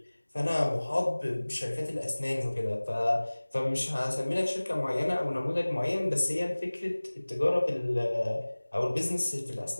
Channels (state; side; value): inverted; both; correlation -1.00